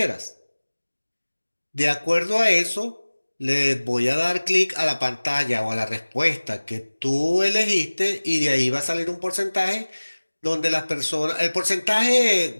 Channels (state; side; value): inverted; both; correlation -1.00